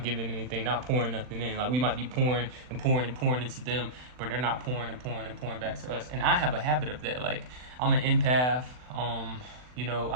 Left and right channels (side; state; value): left; late; 40 ms